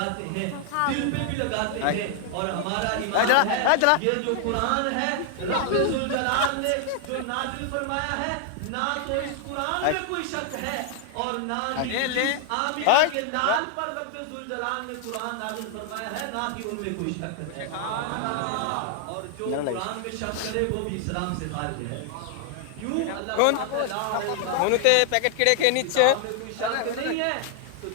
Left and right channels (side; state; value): both; different; correlation 0.00